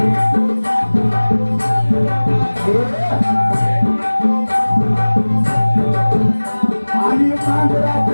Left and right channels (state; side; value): inverted; both; correlation -1.00